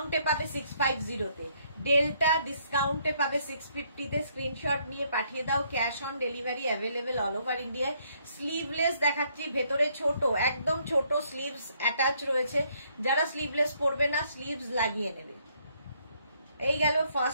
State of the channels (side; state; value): both; inverted; correlation -0.69